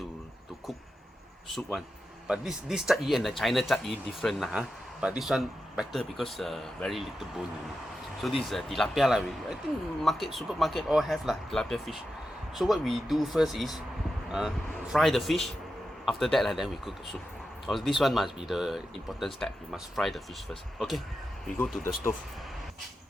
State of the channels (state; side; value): normal; both; correlation 0.90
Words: cook soup one. But this 鲫鱼 and the China 鲫鱼 different but this one better because very little bone in it. So this is tilapia lah. I think supermarket all have lah tilapia fish. So what we do first is fry the fish. After that then we cook the soup. This one must be the important step. You must fry the fish first. Okay, we go to the stove.